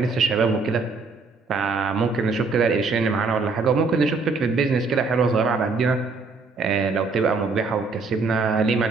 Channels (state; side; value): quieter; left; 4.2 dB